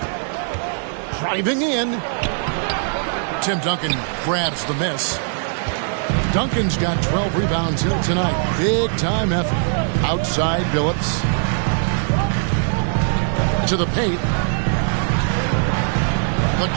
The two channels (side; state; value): left; silent; 65 dB below the other